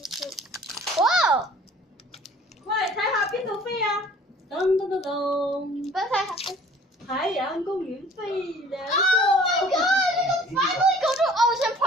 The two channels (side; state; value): both; normal; correlation 0.51